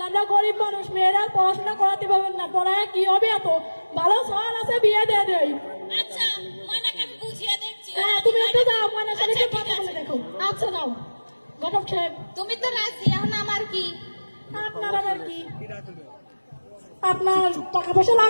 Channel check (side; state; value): both; inverted; correlation -1.00